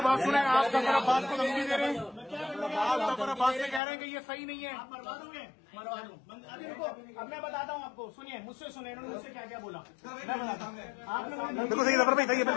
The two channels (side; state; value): right; drops out; at 3.8 s